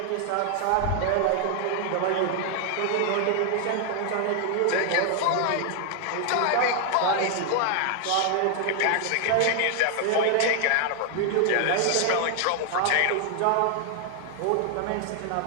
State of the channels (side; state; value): both; different; correlation 0.00